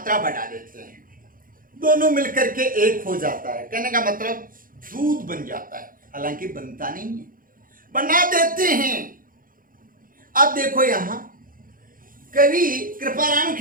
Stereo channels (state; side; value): late; left; 0.40 ms